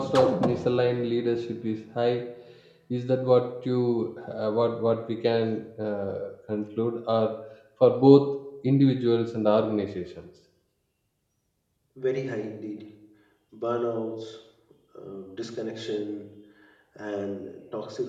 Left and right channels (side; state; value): both; identical; correlation 1.00